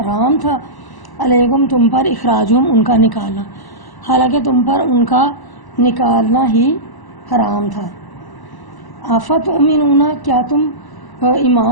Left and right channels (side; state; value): right; late; 1.0 ms